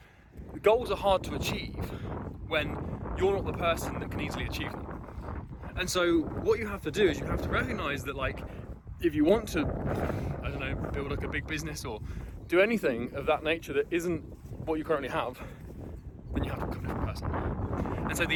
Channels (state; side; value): identical; both; correlation 1.00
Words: goals are hard to achieve when you're not the person that can easily achieve them. And so what you have to do is you have to recognize that, like, if you want to, I don't know, build like a big business or do anything of that nature that isn't what you currently have, then you have to become a different person. And so